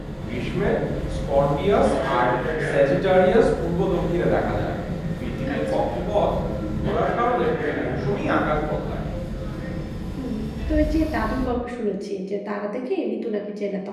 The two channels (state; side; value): identical; both; correlation 1.00